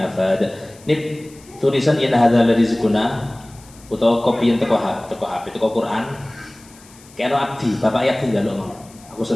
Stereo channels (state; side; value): noise; left; hiss, 24 dB below the sound